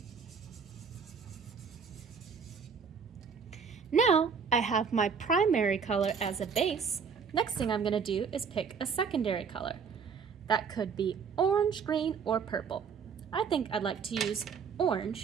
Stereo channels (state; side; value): quieter; left; 6.1 dB